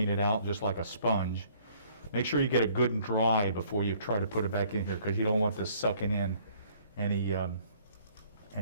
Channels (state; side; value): inverted; both; correlation -0.60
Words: it out just like a sponge. Make sure you get it good and dry before you try to put it back in here, because you don't want this sucking in any